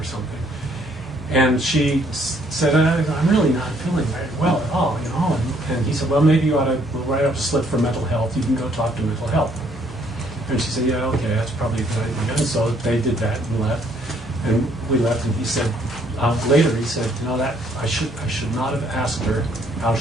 something. And she said, I'm really not feeling very well at all, you know. And he said, well, maybe you ought to write up a slip for mental health. You can go talk to mental health. And she said, yeah, okay, that's probably a good idea. And so they did that and left. And we left, and he said, later he said, you know, that I should not have asked her how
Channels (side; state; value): both; normal; correlation 0.66